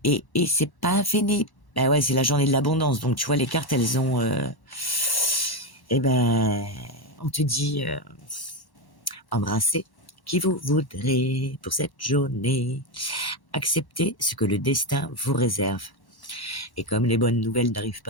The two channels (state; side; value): late; right; 1.1 ms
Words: c'est pas fini. Ben ouais, c'est la journée de l'abondance. Donc tu vois, les cartes, elles ont... on te dit, embrassez qui vous voudrez pour cette journée. Acceptez ce que le destin vous réserve. Et comme les bonnes nouvelles n'arrivent